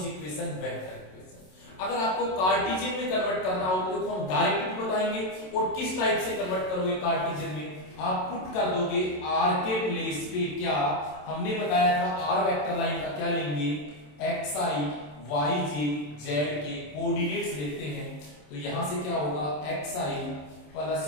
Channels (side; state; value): right; late; 27 ms